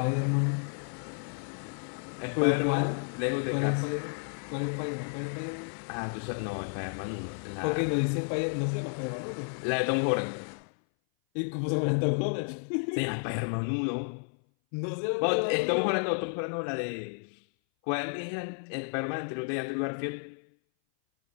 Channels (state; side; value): silent; right; 57 dB below the other